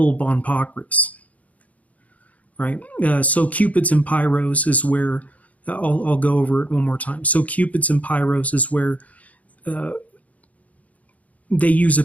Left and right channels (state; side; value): late; right; 0.071 ms